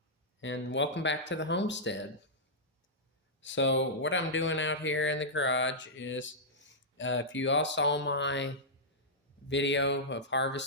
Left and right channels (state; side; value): normal; both; correlation -0.11